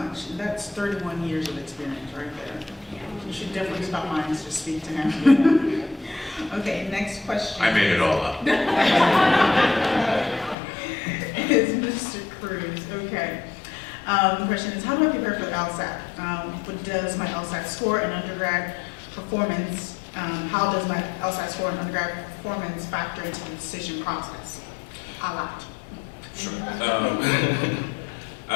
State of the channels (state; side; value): drops out; right; at 10.6 s